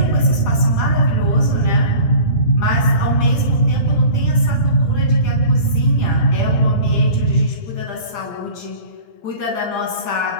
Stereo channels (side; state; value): right; late; 17 ms